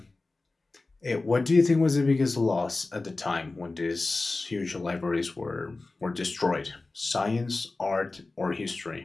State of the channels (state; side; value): quieter; right; 3.4 dB